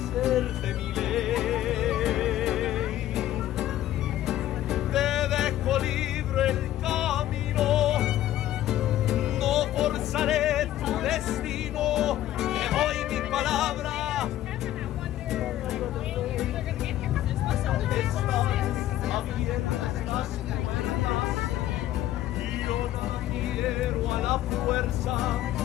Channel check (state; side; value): quieter; right; 13.3 dB